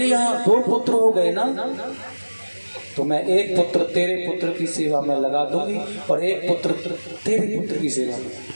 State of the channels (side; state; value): both; inverted; correlation -1.00